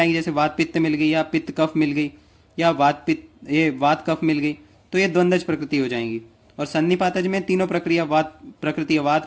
जैसे वात पित्त मिल गई या पित्त कफ मिल गई या वात कफ मिल गई, तो ये द्वंद्वज प्रकृति हो जाएंगी। और सन्निपातज में तीनों प्रक्रिया वात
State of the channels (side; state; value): both; identical; correlation 1.00